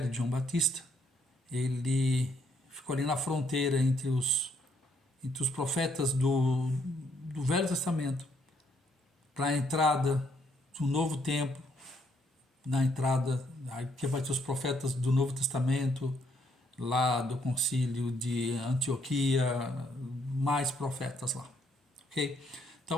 de João Batista, ele ficou ali na fronteira entre os profetas do Velho Testamento para a entrada do Novo Tempo, na entrada, que vai ter os profetas do Novo Testamento, lá do concílio de Antioquia, mais profetas lá, ok?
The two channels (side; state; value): both; normal; correlation 0.71